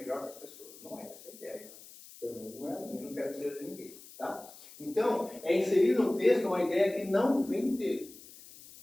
que as pessoas. Não é essa a ideia. Pelo menos não é a minha, não quero dizer de ninguém. Tá? Então, é inserir no texto uma ideia que não vem dele.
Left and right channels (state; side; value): noise; left; hiss, 19 dB below the sound